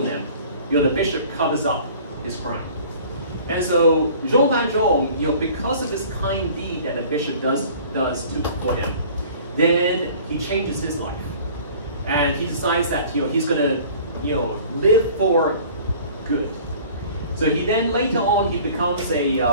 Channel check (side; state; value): both; inverted; correlation -0.48